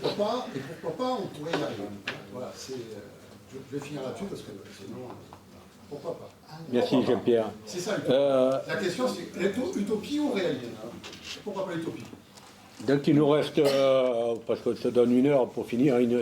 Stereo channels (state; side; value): identical; both; correlation 1.00